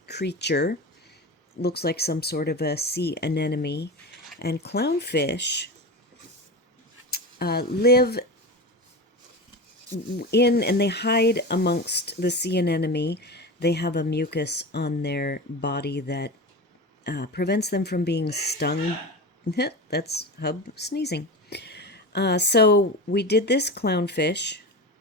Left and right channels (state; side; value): normal; both; correlation 0.25